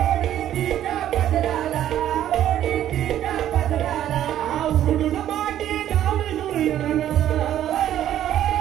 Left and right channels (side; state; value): left; quieter; 11.6 dB